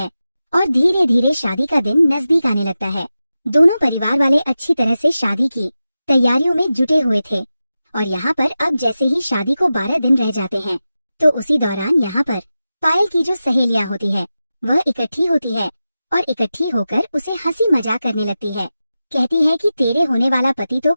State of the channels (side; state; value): both; inverted; correlation -0.93